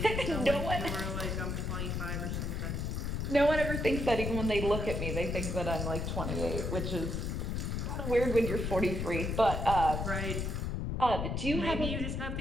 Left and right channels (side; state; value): left; noise; rumble, 2 dB below the sound